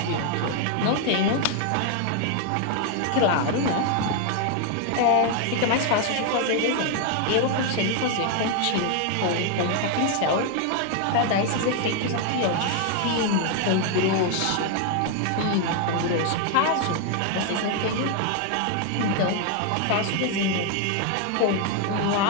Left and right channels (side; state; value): both; different; correlation 0.00